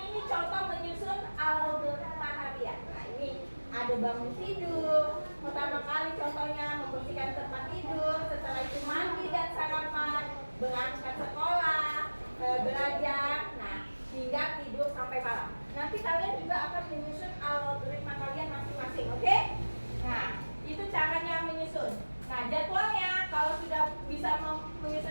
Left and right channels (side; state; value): both; inverted; correlation -1.00